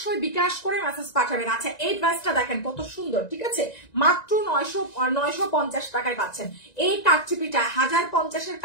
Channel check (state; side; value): late; right; 1.9 ms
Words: বিকাশ করে মেসেজ পাঠাবেন। আচ্ছা এই ড্রেসটা দেখেন কত সুন্দর, ঠিক আছে? মাত্র 950 টাকায় পাচ্ছেন। এই কাটচুপিটা 1050-এর